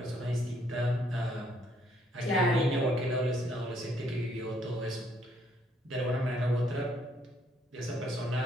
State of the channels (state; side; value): normal; both; correlation 0.68